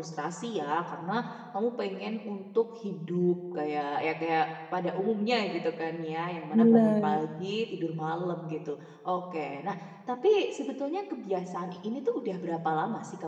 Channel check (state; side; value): identical; both; correlation 1.00